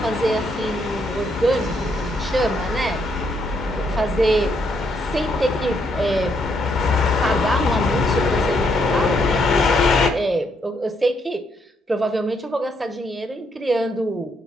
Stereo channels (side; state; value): both; normal; correlation 0.74